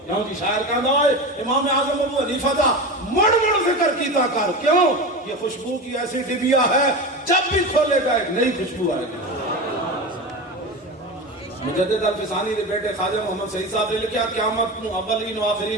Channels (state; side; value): normal; both; correlation 0.25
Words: کیوں جی شاعر کہندا ہے امام اعظم ابو حنیفہ دا مڑ ذکر کیتا کر کیوں یہ خوشبو کی ایسی ڈبیا ہے جب بھی کھولے گا ایک نئی خوشبو آئے گی مجدد الفسانی دے بیٹے خواجہ محمد سعید صاحب نے لکھا قیامت نو اولین و